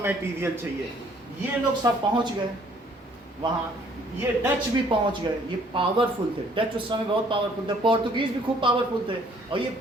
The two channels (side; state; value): both; normal; correlation 0.60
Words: चाहिए। ये लोग सब पहुंच गए वहाँ, ये डच भी पहुंच गए, ये पावरफुल थे, डच उस समय बहुत पावरफुल थे, पोर्तुगीज भी खूब पावरफुल थे, और ये